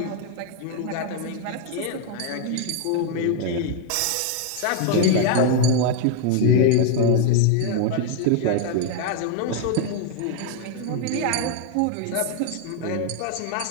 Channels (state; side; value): different; both; correlation 0.00